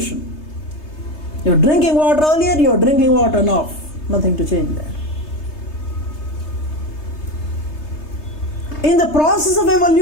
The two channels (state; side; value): late; right; 3.3 ms